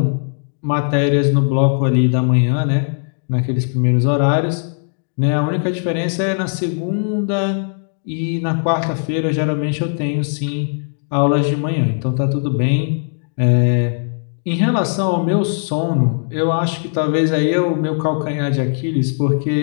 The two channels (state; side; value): silent; right; digital silence